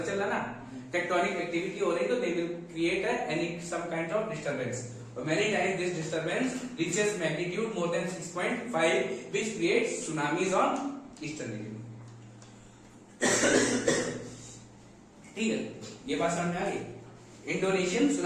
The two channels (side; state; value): both; identical; correlation 1.00